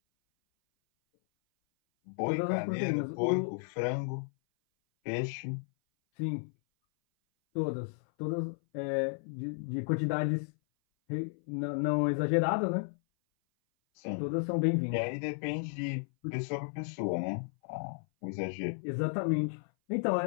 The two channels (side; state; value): right; silent; 56 dB below the other